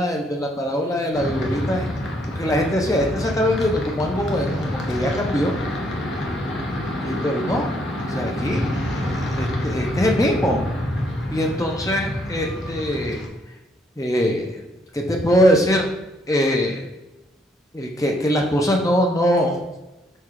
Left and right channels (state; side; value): normal; both; correlation 0.70